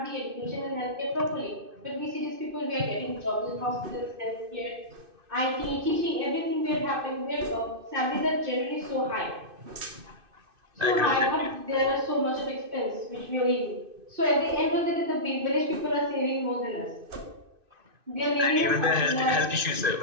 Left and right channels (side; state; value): left; late; 2.5 ms